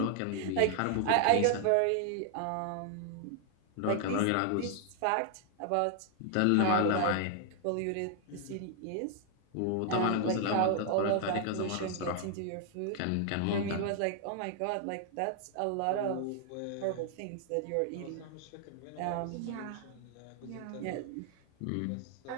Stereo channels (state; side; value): different; both; correlation 0.00